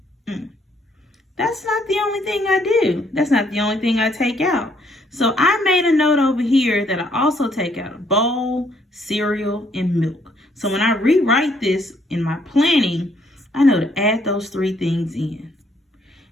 That's not the only thing I do. That's not the only thing I take out. So I made a note over here that I also take out a bowl, cereal, and milk. So when I rewrite this in my planning, I know to add those 3 things in.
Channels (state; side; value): normal; both; correlation 0.68